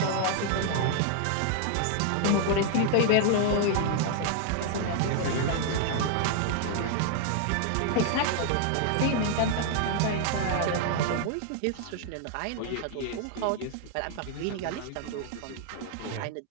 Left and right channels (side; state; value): both; different; correlation 0.00